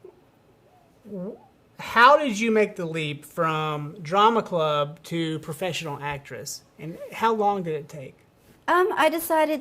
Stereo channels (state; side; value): identical; both; correlation 1.00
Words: how did you make the leap from drama club to professional actress? And how long did it take? I